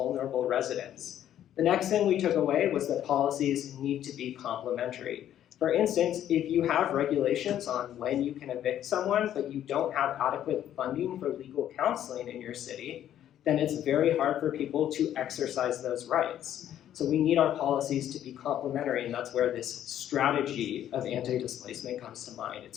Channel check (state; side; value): quieter; right; 11.1 dB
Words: residents? The next thing we took away was that policies need to be complementary. For instance, if you have regulations on when you can evict someone, but you don't have adequate funding for legal counseling in your city, then it's very hard for people to exercise those rights. So we need our policies to be complementary, and that's where this strategy of anti-displacement comes to mind.